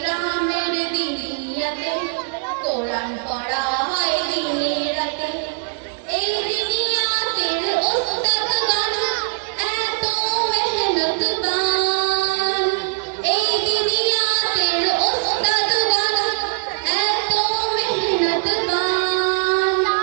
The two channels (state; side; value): silent; left; 59 dB below the other